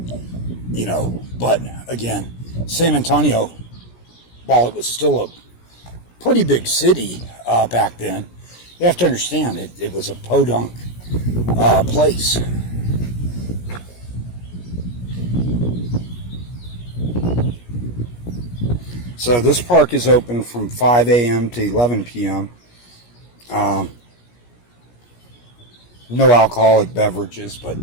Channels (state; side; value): late; right; 17 ms